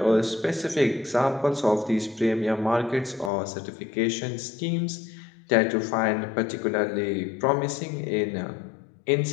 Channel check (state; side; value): drops out; right; at 3.3 s